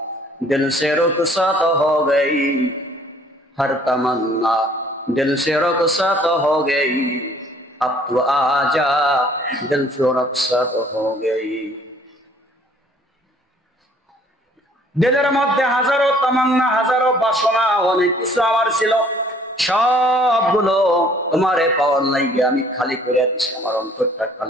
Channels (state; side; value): normal; both; correlation 0.58